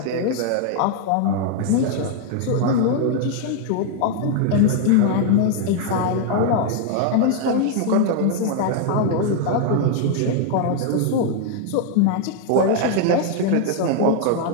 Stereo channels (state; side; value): different; both; correlation 0.00